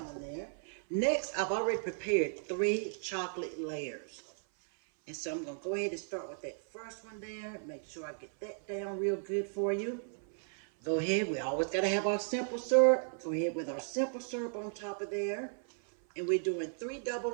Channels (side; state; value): left; silent; 54 dB below the other